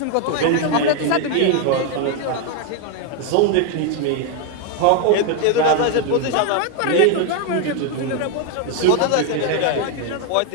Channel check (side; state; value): both; different; correlation 0.01